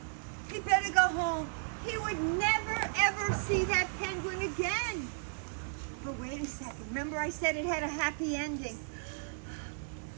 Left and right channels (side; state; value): left; silent; digital silence